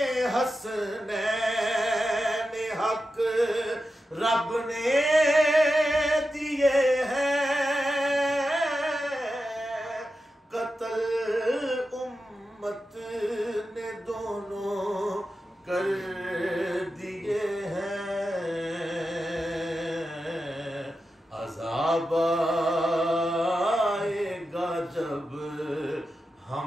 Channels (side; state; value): both; normal; correlation 0.90